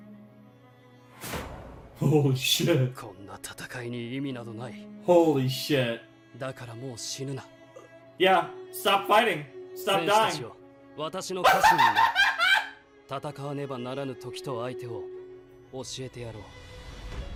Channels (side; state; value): both; identical; correlation 1.00